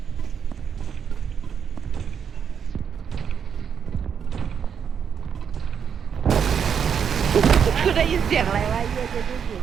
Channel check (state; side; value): quieter; left; 7.4 dB